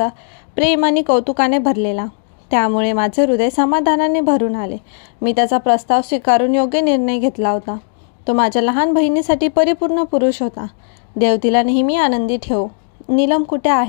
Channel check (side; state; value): right; silent; 69 dB below the other